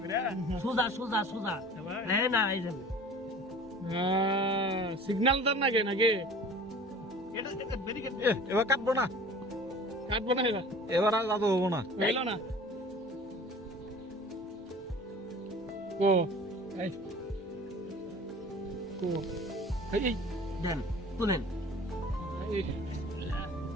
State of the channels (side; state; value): both; normal; correlation 0.43